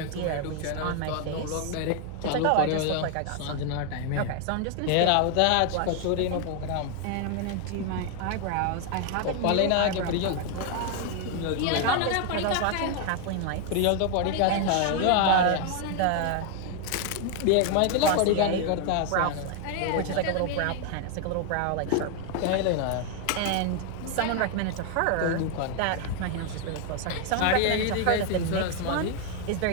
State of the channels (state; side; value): different; both; correlation 0.00